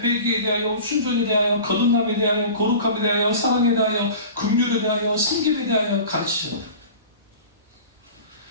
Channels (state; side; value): inverted; both; correlation -0.38